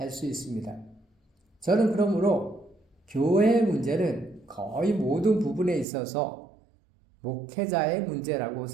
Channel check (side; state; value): left; drops out; at 5.9 s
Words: 수 있습니다. 저는 그러므로 교회의 문제는 거의 모든 부분에 있어서 목회자의 문제라고